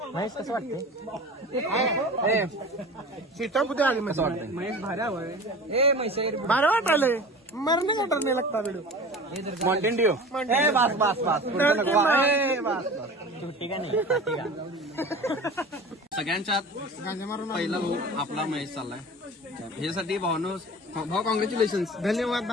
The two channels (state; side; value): normal; both; correlation 0.37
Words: कसं वाटते सीटा कुठे आली महेश वाटतं महेश भारी हवंय भारी वाटायलंय मरणे वाटत नाही लागता व्हिडिओ माउंटेन ड्यू बस सुट्टी का नाही सगळ्यांच्यात पहिला भाऊ आपला महेश चाललाय ह्यासाठी भाऊ कॉंग्रॅच्युलेशन धन्यवाद